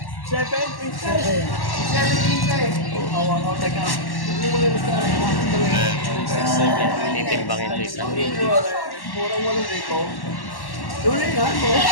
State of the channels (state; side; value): late; right; 1.1 ms